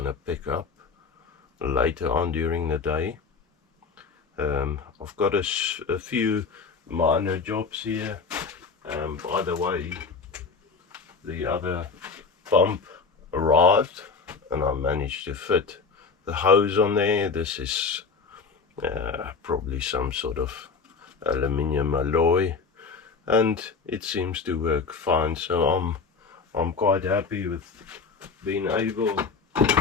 pick up later on during the day. I've got a few minor jobs here. By the way, the other pump arrived and I managed to fit the hose on there. This is probably some sort of aluminium alloy, and it seems to work fine, so I'm quite happy with being able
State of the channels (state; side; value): quieter; right; 4.9 dB